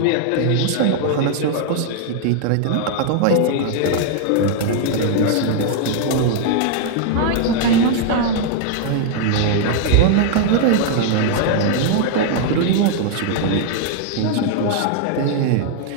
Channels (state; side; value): different; both; correlation 0.00